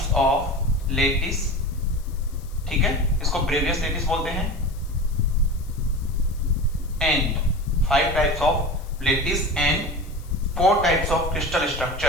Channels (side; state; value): left; noise; hiss, 24 dB below the sound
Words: of lattice, ठीक है, इसको ब्रेवियस लेटिस बोलते हैं। And 5 types of lattice and 4 types of crystal